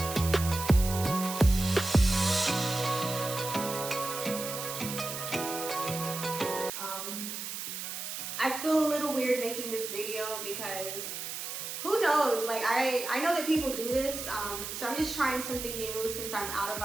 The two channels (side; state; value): right; noise; hiss, 6 dB below the sound